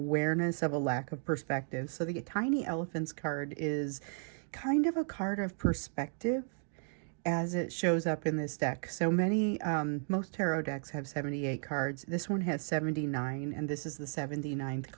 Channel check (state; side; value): silent; left; 55 dB below the other